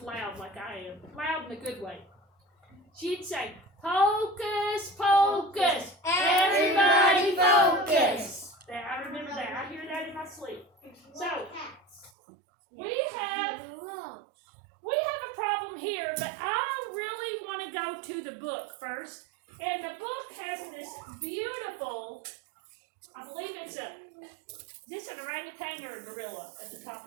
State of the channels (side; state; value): left; drops out; at 12.1 s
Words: loud like I am. Loud in a good way. She'd say, "Hocus pocus, everybody focus." I remember that. I hear that in my sleep. So, we have a problem here, but I really want to go to the book first. And the book has this beautiful, I believe it's is this an orangutan or a gorilla at the top